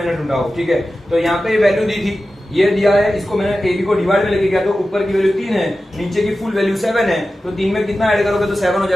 ढूंढा हो, ठीक है। तो यहाँ पे वैल्यू दी थी, ये दिया है, इसको मैंने AB को डिवाइड में लेके गया, तो ऊपर की वैल्यू 3 है, नीचे की फुल वैल्यू 7 है, तो 3 में कितना ऐड करोगे तो 7 हो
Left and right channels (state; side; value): normal; both; correlation 0.94